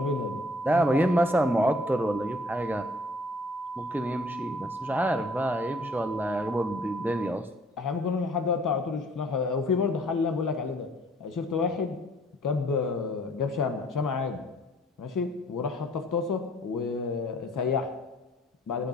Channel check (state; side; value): normal; both; correlation 0.58